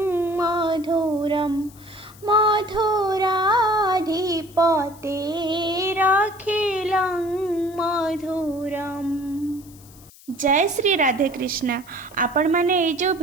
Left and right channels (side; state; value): left; noise; hiss, 23 dB below the sound